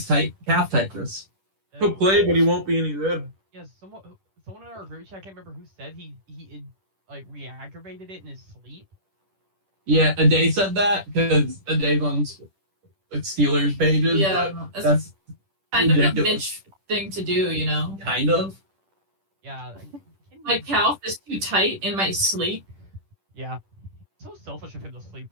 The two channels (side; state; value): left; late; 10 ms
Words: tight calf tightness. He'll play, but he won't be any good. Yeah, someone in our group chat, I can't remember who said he like re-aggravated it in his sleep. Yeah, Ade said that because Ade's on like Steelers pages. Yeah, but that's that's kind of a ridiculous. bitch thing to do, you know? Kind of. Yeah. My calf is too tight in my sleep. Yeah. So selfish of him to